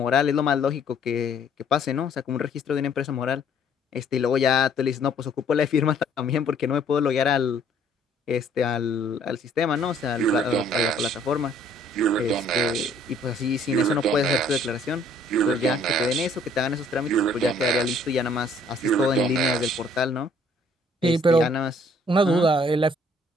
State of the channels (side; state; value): both; normal; correlation 0.61